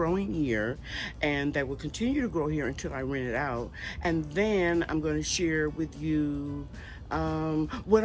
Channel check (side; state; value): both; identical; correlation 1.00